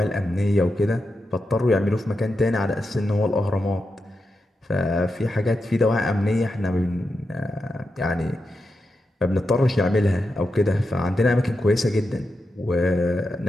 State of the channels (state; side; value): normal; both; correlation 0.88